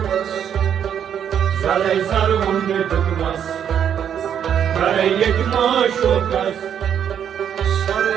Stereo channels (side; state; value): left; quieter; 8.8 dB